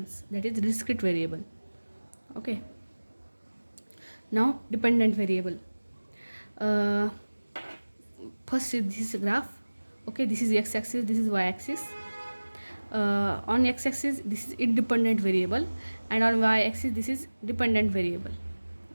That is discrete variable. Okay, now dependent variable. First is this graph. Okay, this is x-axis, this is y-axis. On x-axis this is independent variable, and on y-axis this is dependent variable.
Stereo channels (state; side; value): inverted; both; correlation -1.00